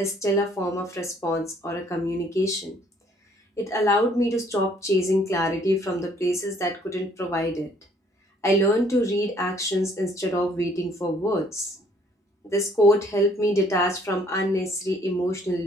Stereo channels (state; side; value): normal; both; correlation 0.62